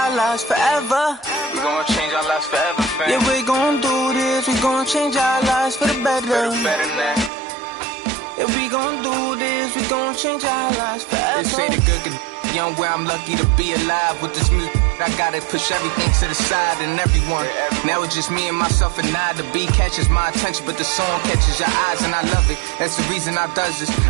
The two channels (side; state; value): left; drops out; at 7.3 s